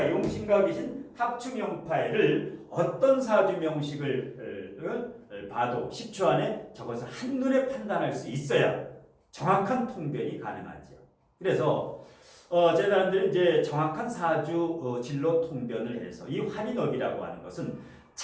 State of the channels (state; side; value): identical; both; correlation 1.00